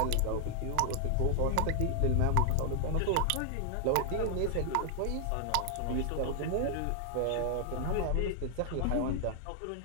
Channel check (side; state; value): both; different; correlation 0.00